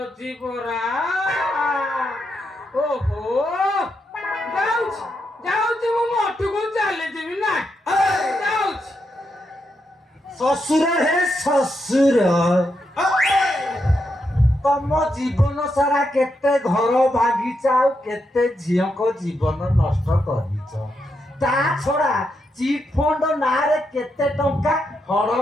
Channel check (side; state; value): both; normal; correlation 0.82